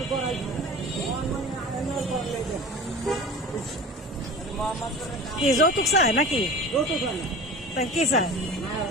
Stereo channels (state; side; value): normal; both; correlation 0.36